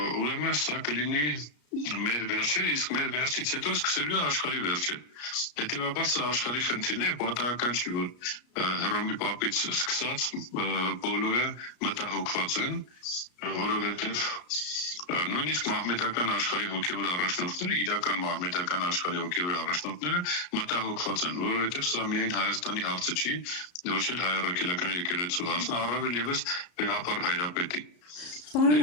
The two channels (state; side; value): late; right; 33 ms